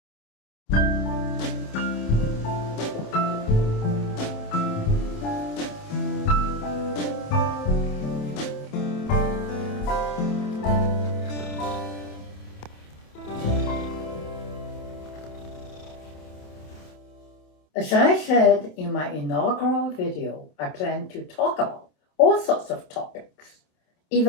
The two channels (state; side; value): late; right; 27 ms